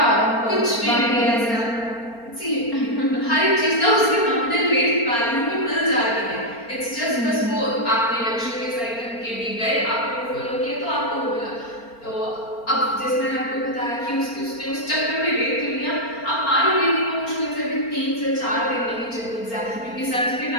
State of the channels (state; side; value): late; right; 4.3 ms